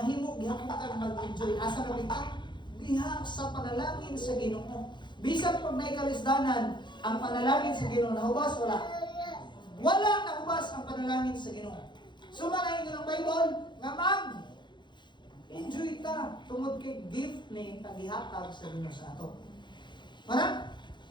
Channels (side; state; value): right; late; 0.22 ms